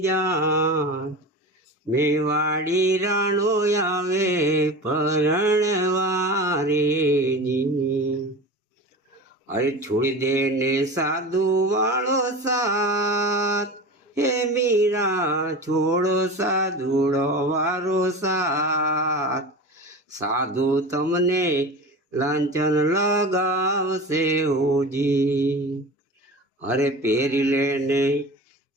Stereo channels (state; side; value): normal; both; correlation 0.31